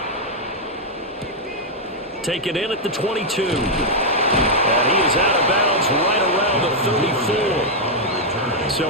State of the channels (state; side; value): normal; both; correlation -0.03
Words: Take it in at the 22. And he is out of bounds right around 34.